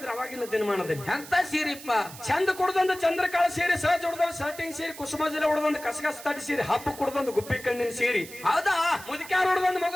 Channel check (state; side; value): noise; right; hiss, 15 dB below the sound